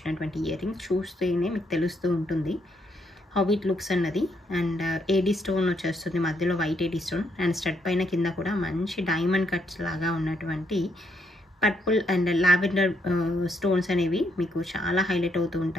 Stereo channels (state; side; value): normal; both; correlation 0.74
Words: ఇయర్ రింగ్స్. చూస్తేనే మీకు తెలుస్తూ ఉంటుంది హౌ ఇట్ లుక్స్ అన్నది. అండ్ ఏడీ స్టోన్ వచ్చేస్తుంది, మధ్యలో white AD stone and stud పైన కింద కూడా మంచి డైమండ్ కట్స్ లాగా ఉన్నటువంటి పర్పుల్ అండ్ లావెండర్ స్టోన్స్ అనేవి మీకు చాలా హైలైట్ అవుతూ